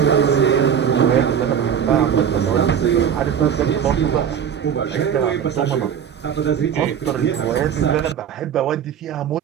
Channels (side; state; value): left; quieter; 8.3 dB